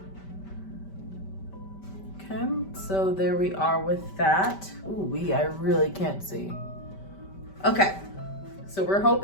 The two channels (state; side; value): late; right; 5.1 ms